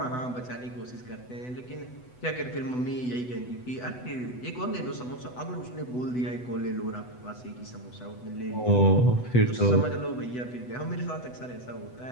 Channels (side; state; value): right; late; 8.0 ms